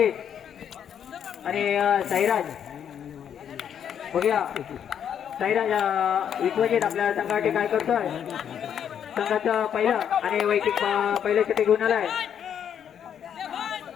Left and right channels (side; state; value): right; quieter; 8.8 dB